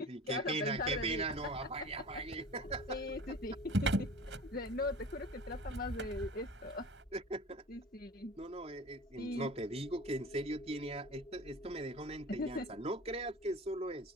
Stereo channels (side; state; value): both; normal; correlation 0.38